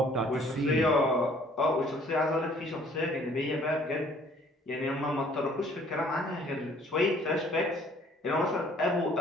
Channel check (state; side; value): normal; both; correlation 0.57